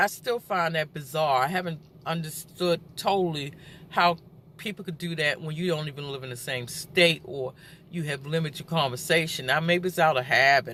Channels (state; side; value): identical; both; correlation 1.00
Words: still find that bizarre. I haven't understood totally how people could do that when you don't even live in the same state, or you have limited conversation. Now, maybe it's out of